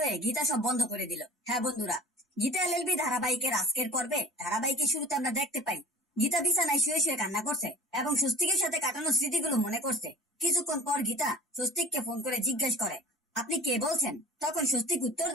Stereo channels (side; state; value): both; normal; correlation 0.41